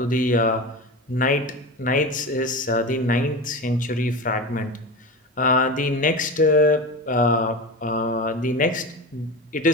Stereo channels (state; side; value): normal; both; correlation 0.26